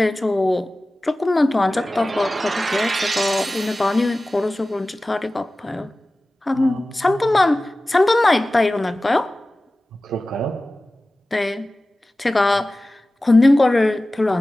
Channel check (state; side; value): normal; both; correlation 0.97